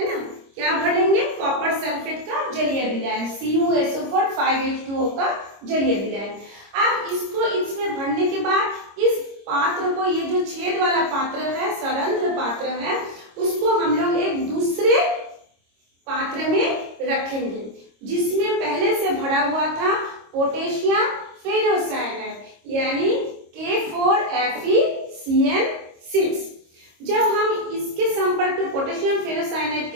ना। क्या भरेंगे, कॉपर सल्फेट का जलीय विलयन, CuSO4 5H2O का जलीय विलयन। अब इसको इसमें भरने के बाद इस पात्र को, ये जो छेद वाला पात्र है, सरंध्र पात्र है, उसको हम लोग एक दूसरे पात्र में रखेंगे जिसमें पहले से भरा हुआ था पोटेशियम फेरोसाइनाइड यानी K4FeCN6। जब हम इसके संपर्क में, पोटेशियम फेरोसाइनाइड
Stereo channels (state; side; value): late; left; 26 ms